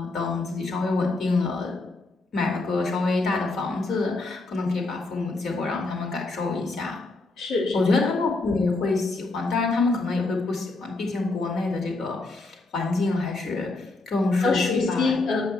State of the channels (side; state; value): right; quieter; 3.3 dB